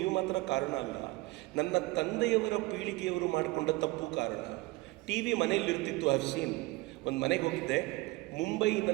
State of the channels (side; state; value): left; quieter; 21.2 dB